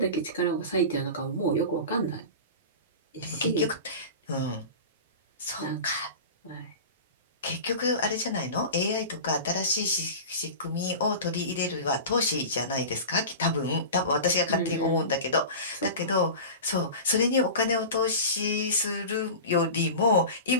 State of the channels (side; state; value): both; inverted; correlation -0.31